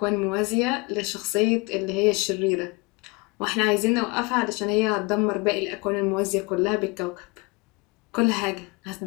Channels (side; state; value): right; quieter; 26.8 dB